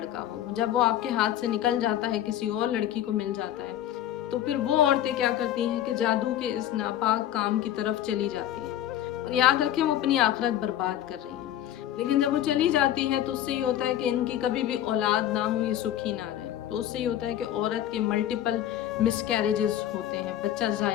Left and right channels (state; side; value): quieter; right; 11.7 dB